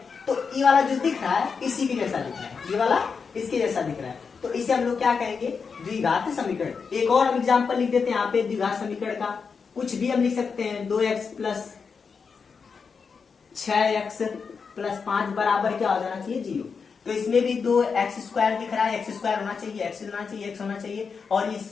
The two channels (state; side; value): quieter; right; 5.5 dB